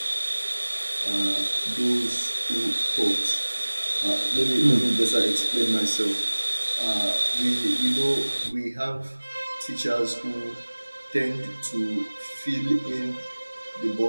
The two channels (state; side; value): inverted; both; correlation -1.00